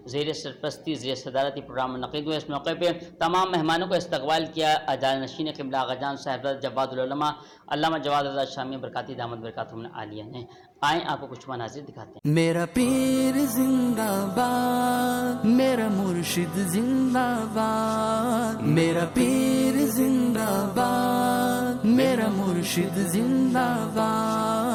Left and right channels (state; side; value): identical; both; correlation 1.00